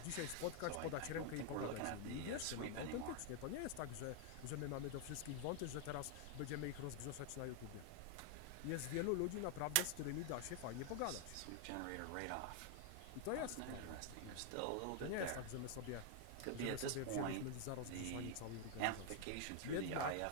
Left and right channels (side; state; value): both; different; correlation 0.00